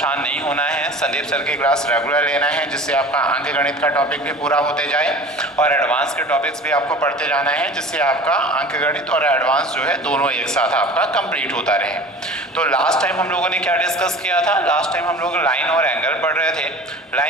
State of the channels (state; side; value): normal; both; correlation 0.40